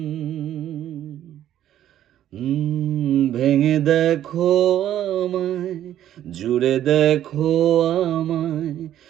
ভেঙে দেখো আমায়, জুড়ে দেখো আমায়,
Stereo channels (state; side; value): quieter; left; 11.6 dB